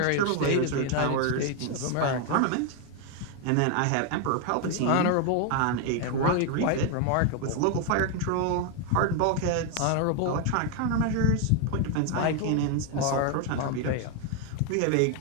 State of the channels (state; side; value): different; both; correlation 0.01